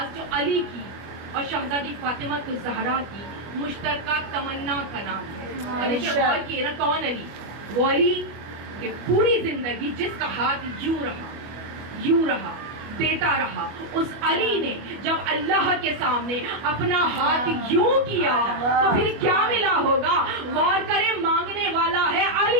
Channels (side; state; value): left; late; 25 ms